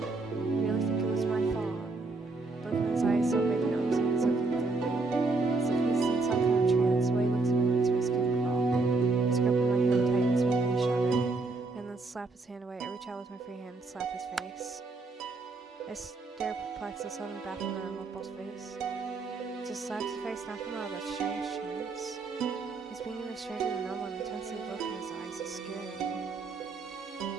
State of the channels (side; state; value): left; quieter; 3.7 dB